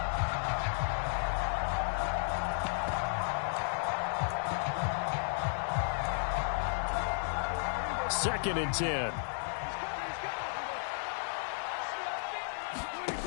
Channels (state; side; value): silent; right; 55 dB below the other